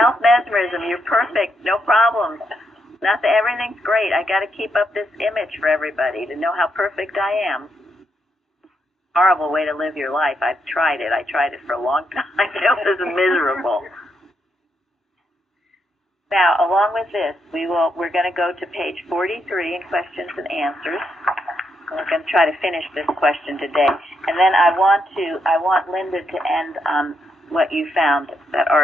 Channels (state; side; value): normal; both; correlation 0.79